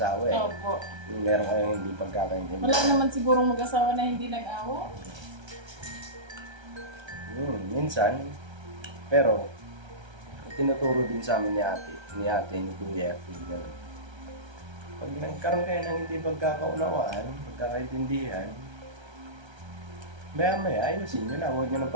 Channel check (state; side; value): late; left; 1.3 ms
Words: eh. Opo. Yung meron kayong hindi pagkakaintindi. Wala naman sigurong mag-asawa na hindi nag-awa. Minsan. Pero, tinuturo din sa amin ni ate, ni kuya, ganun. Pag nagkaroon kayo ng hindi pagkakaunawaan, pagkakaintindihan, maya-maya, ayusin nyo na, huwag nyo nang